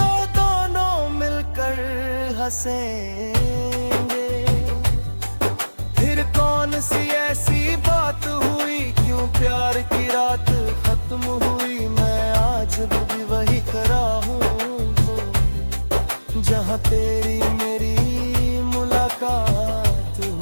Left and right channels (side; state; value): both; inverted; correlation -1.00